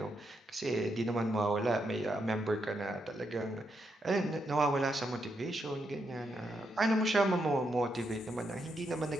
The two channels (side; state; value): both; normal; correlation 0.81